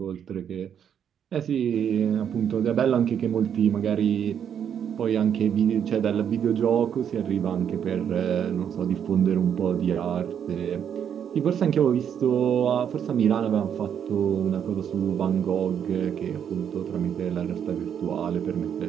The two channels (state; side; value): quieter; left; 8.5 dB